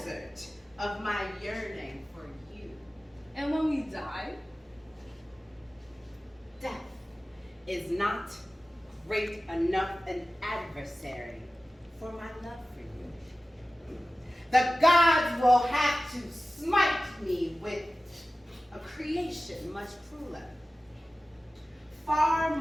of my yearning for you. And when we die? Death is not great enough an adversary for my love for you. The gods will have to smite me with a creation much crueler, far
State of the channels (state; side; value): normal; both; correlation 0.96